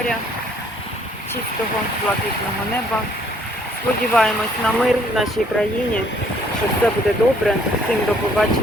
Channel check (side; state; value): both; normal; correlation 0.63